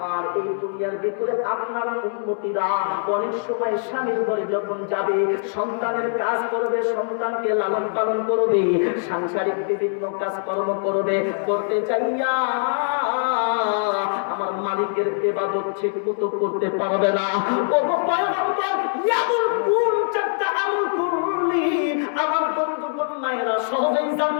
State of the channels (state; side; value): silent; right; 63 dB below the other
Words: এই দুনিয়ার ভিতরে আপনার উম্মতিরা অনেক সময় স্বামীর ঘরে যখন যাবে সন্তানের কাজ করবে, সন্তানকে লালন পালন করবে, সাংসারিক বিভিন্ন কাজকর্ম করবে, করতে চাইয়া আমার মালিকের ইবাদত ঠিক মতো করতে পারবে না। ও পয়গম্বর, ইয়ামুল কুন চারটা আমল করলি আমার বন্ধুগণ মায়েরা সহজেই